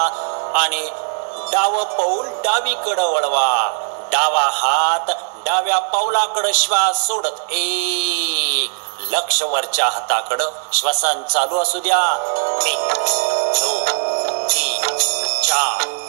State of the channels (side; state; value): left; silent; digital silence